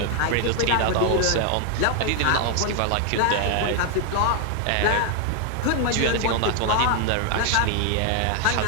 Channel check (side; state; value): both; different; correlation 0.01